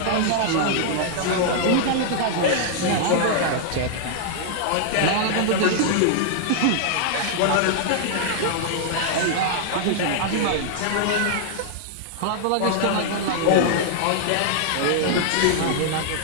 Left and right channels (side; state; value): both; different; correlation -0.01